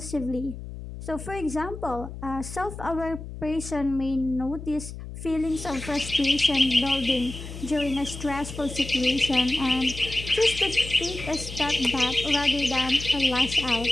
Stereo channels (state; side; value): noise; left; hum, 11 dB below the sound